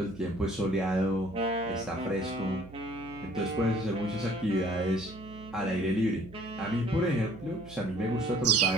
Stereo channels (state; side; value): noise; right; hum, 17 dB below the sound